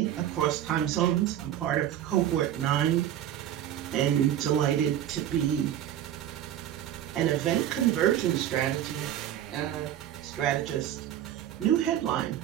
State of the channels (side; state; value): left; quieter; 11.4 dB